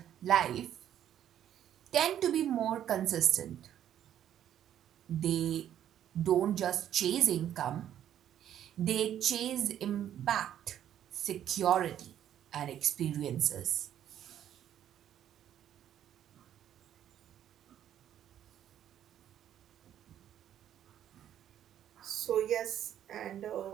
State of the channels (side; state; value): left; quieter; 10.7 dB